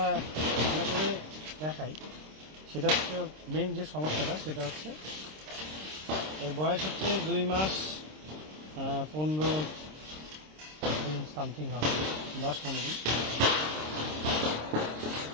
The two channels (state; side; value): late; left; 26 ms